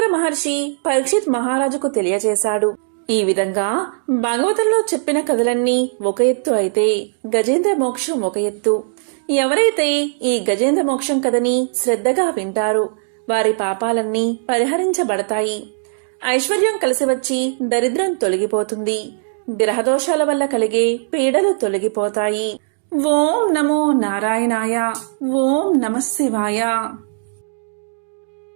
మహర్షి పరీక్షిత్ మహారాజుకు తెలియజేశాడు. ఈ విధంగా భాగవతంలో చెప్పిన కథలన్నీ ఒక ఎత్తు అయితే గజేంద్ర మోక్షం ఒక ఎత్తు. ఎవరైతే ఈ గజేంద్ర మోక్షం కథని శ్రద్ధగా వింటారో వారి పాపాలన్నీ పరిహరించబడతాయి. ఐశ్వర్యం కలిసి వచ్చి దరిద్రం తొలగిపోతుంది. గ్రహదోషాల వల్ల కలిగే పీడలు తొలగిపోతాయి. ఓం నమో నారాయణాయ. ఓం నమః శివాయ.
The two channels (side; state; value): left; silent; digital silence